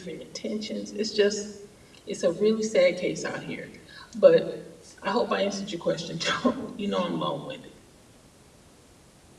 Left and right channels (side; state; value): both; identical; correlation 1.00